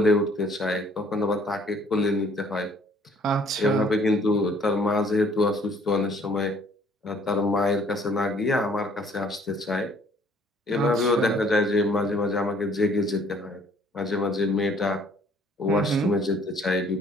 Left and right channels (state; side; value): normal; both; correlation 0.59